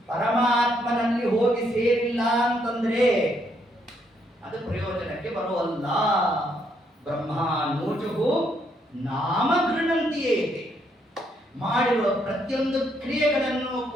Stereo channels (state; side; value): normal; both; correlation 0.73